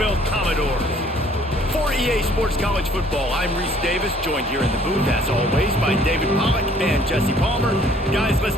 Commodores. For EA Sports College Football, I'm Reese Davis, joined here in the booth, as always, by David Pollack and Jesse Palmer. Guys, let's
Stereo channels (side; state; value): both; normal; correlation 0.58